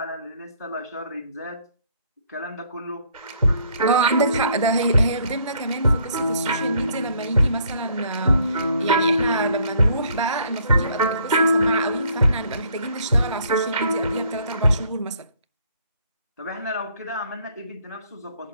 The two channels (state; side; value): inverted; both; correlation -0.64